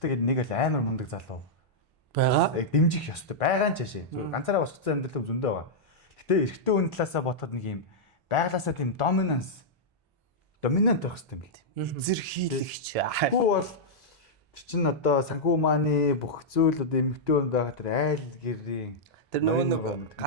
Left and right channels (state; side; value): normal; both; correlation -0.08